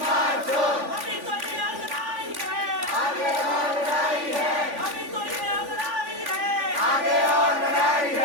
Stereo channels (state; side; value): late; left; 3.5 ms